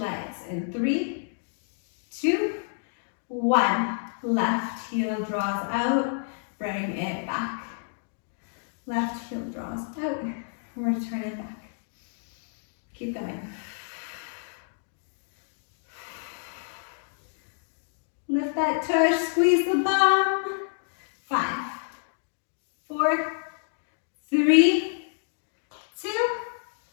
in 3, 2, 1. Left heel draws out, Bring it back. Left heel draws out. Return it back. Keep going. Lift that tush, squeeze the bum. 5, 4, 3, 2,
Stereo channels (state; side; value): silent; right; digital silence